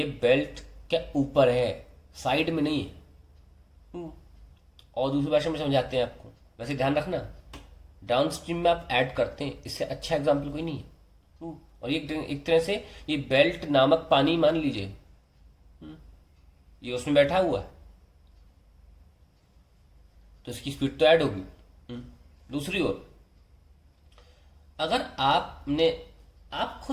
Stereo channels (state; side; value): identical; both; correlation 1.00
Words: बेल्ट के ऊपर है, साइड में नहीं है। और दूसरी भाषा में समझाते हैं आपको, वैसे ध्यान रखना डाउन स्ट्रीम में आप ऐड करते हैं, इससे अच्छा एग्जाम्पल कोई नहीं है। और ये एक तरह से ये बेल्ट नामक पानी मान लीजिए, ये उसमें बैठा हुआ है तो इसकी स्पीड तो ऐड होगी। दूसरी ओर अगर आप